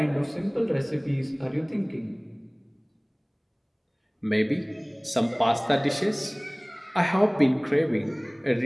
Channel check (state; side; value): identical; both; correlation 1.00